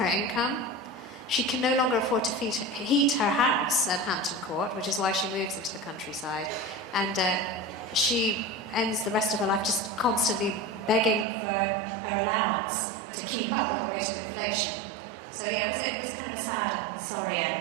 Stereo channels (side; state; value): left; drops out; at 11.2 s